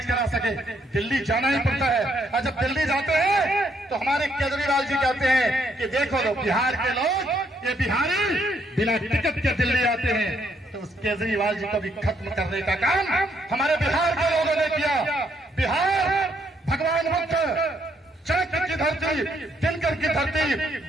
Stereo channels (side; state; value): both; normal; correlation 0.72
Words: करा सके। दिल्ली जाना ही पड़ता है, और जब दिल्ली जाते हैं तो हमारे केजरीवाल जी कहते हैं कि देखो लो, बिहार के लोग, ये बिहारी बिना टिकट के दिल्ली आते हैं। तो उस केजरीवाल जी को भी खत्म करने का काम हमारे बिहार के धरती, दिनकर की धरती,